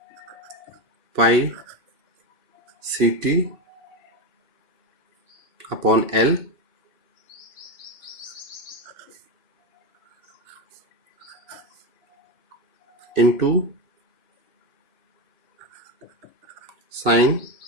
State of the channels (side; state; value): left; late; 3.0 ms